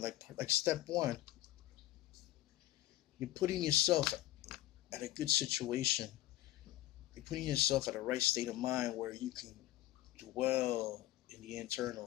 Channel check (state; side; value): quieter; right; 14.9 dB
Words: step one, you're putting yourself at a good situation. You're putting yourself at a right state of mind where you can dwell in the